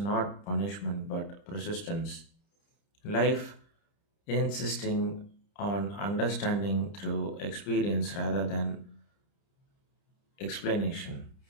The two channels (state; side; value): late; right; 30 ms